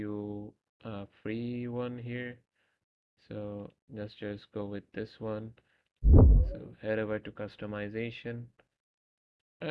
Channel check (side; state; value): both; identical; correlation 1.00